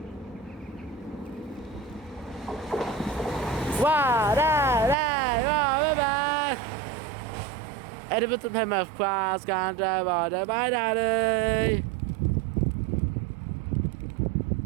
Wow, Edinburgh to Plymouth, cross country, bye daddy.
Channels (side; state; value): left; drops out; at 5.0 s